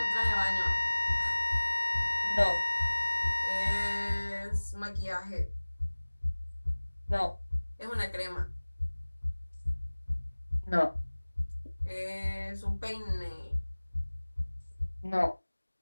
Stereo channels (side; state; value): both; inverted; correlation -1.00